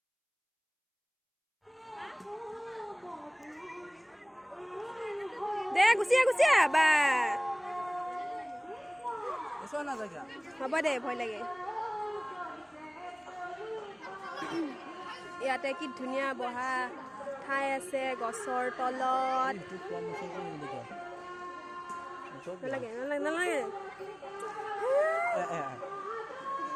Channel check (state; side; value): identical; both; correlation 1.00